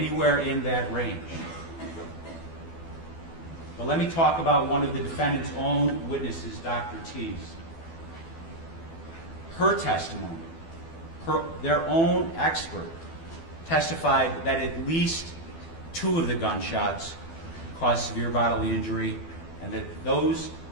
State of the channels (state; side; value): late; right; 12 ms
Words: in that range. But let me talk about one of the defendant's own witnesses, Dr. Teese. Her testimony, their own expert, testified that at least 2 of the gunshots caused severe bodily injury, and that those